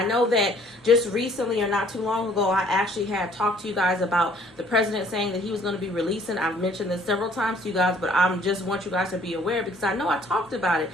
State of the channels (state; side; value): normal; both; correlation 0.59